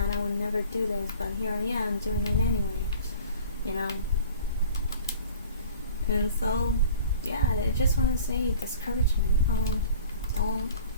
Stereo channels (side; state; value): both; inverted; correlation -0.45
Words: I would never do this, but here I am doing it anyway. And so yeah, I just want to say discouragement.